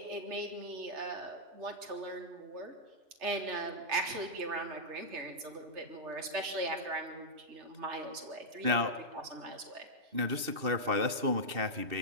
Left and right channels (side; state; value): left; late; 2.7 ms